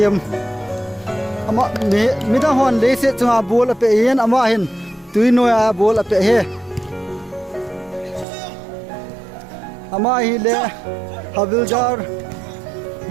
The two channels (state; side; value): drops out; left; at 8.2 s